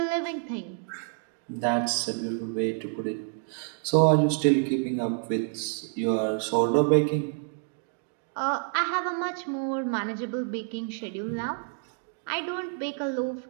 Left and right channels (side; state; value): left; silent; 59 dB below the other